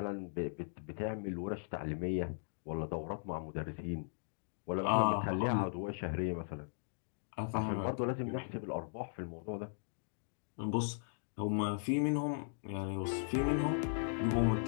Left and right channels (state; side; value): silent; right; digital silence